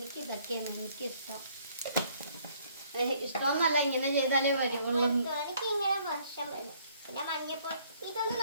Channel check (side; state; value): both; inverted; correlation -0.63